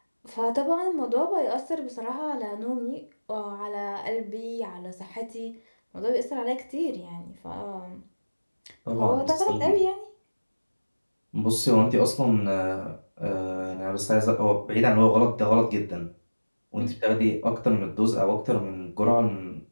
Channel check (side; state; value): both; inverted; correlation -1.00